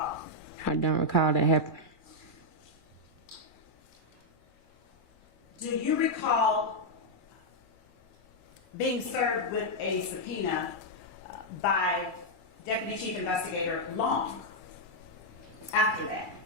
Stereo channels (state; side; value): late; right; 2.3 ms